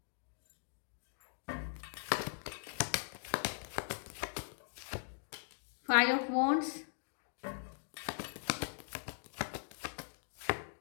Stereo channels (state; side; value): silent; right; digital silence